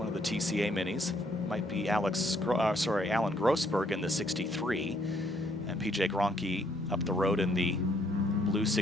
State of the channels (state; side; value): normal; both; correlation 0.68